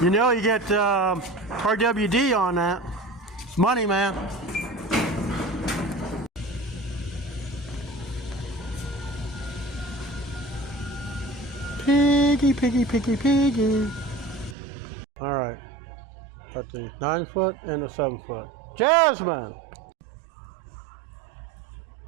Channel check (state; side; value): drops out; left; at 14.6 s